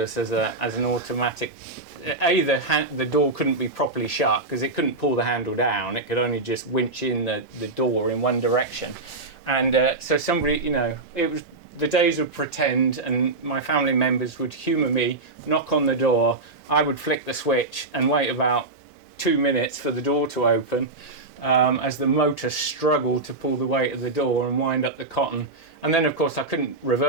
as an automatic. The door couldn't be properly shut because it couldn't pull the handle down. It could only just winch in the door in one direction. And so somebody, you know, it was the days of pretend, and my family members would humour me, knock on the door, I would flick the switch and wait about 2 minutes for the door to open, as the motor struggled to pull the weight of the door and wind up the cotton. And then of course I couldn't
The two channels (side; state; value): left; quieter; 3.1 dB